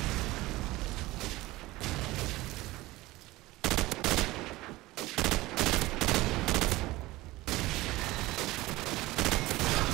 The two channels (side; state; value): left; quieter; 19.1 dB